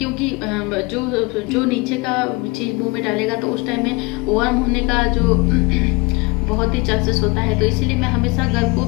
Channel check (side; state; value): right; quieter; 25.9 dB